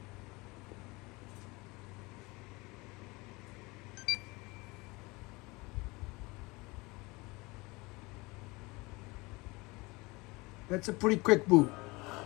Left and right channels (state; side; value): quieter; right; 24.1 dB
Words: That's a pretty quick boot.